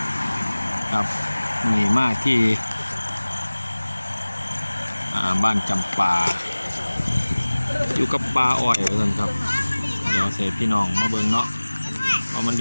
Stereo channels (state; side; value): inverted; both; correlation -1.00